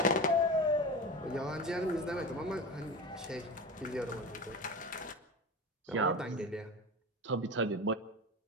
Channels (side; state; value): both; normal; correlation 0.27